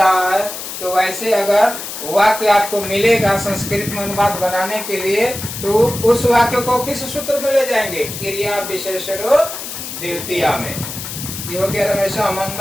है तो वैसे अगर वाक्य आपको मिलेगा संस्कृत में अनुवाद बनाने के लिए, तो उस वाक्य को किस सूत्र में ले जाएंगे? क्रिया विशेषण द्वितीया में। ये हो गया रमेश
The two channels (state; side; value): noise; left; hiss, 8 dB below the sound